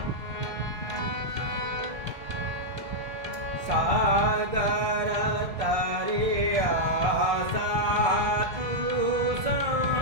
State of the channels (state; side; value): late; left; 1.6 ms